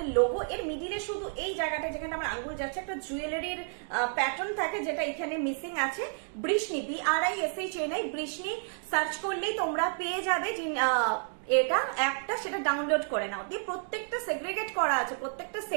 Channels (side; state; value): left; silent; 57 dB below the other